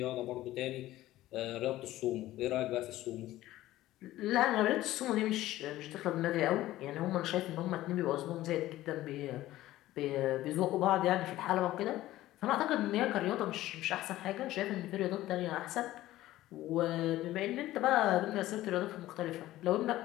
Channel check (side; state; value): right; quieter; 15.5 dB